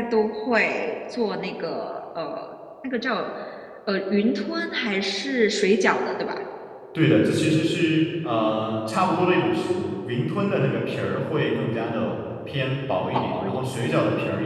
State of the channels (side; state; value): both; identical; correlation 1.00